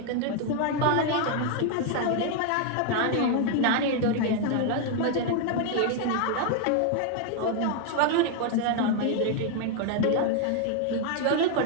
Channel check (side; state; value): both; different; correlation 0.00